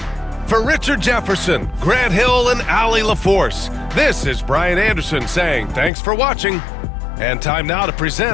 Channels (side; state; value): right; drops out; at 5.9 s